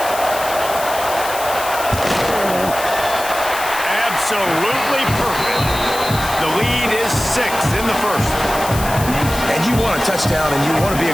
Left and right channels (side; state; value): left; noise; hiss, 9 dB below the sound